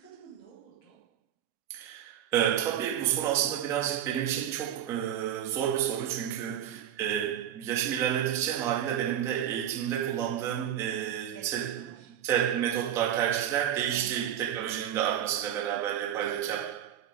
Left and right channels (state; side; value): quieter; left; 10.3 dB